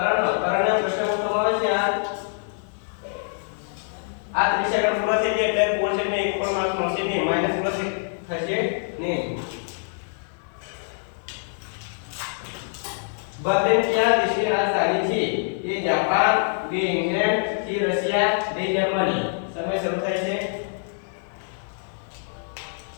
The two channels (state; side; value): silent; right; 62 dB below the other